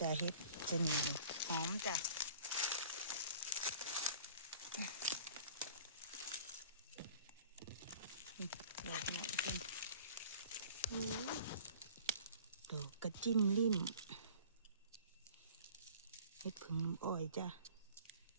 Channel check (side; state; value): both; inverted; correlation -0.47